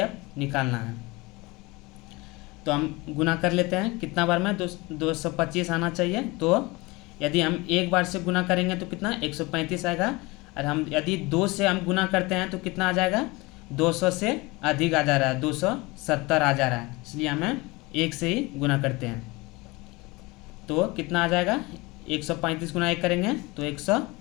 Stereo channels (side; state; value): right; quieter; 23.6 dB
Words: निकालना है। तो हम गुना कर लेते हैं। कितना बार में? 225 आना चाहिए। तो यदि हम 1 बार से गुना करेंगे तो कितना? 135 आएगा। और हम यदि 2 से हम गुना करते हैं तो कितना आ जाएगा? 200 से अधिक आ जा रहा है, 270 आ जा रहा है, इसलिए हमें 1 से ही गुना करते हैं। तो कितना आ जाएगा? 135 गुना 1 करेंगे तो